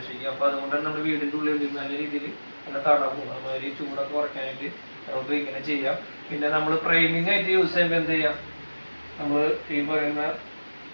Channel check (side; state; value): both; inverted; correlation -1.00